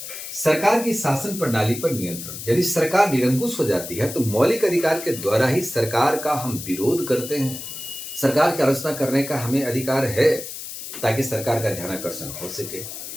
सरकार की शासन प्रणाली पर नियंत्रण, यदि सरकार निरंकुश हो जाती है तो मौलिक अधिकार के द्वारा ही सरकार का हम विरोध करते हैं, सरकार की आलोचना करने का हमें अधिकार है, ताकि सरकार का ध्यानाकर्षण हो सके।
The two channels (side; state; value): left; noise; hiss, 9 dB below the sound